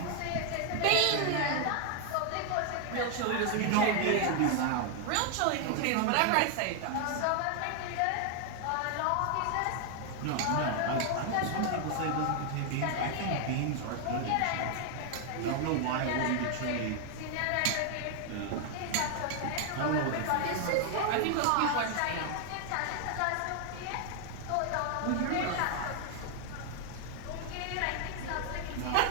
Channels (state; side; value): different; both; correlation 0.00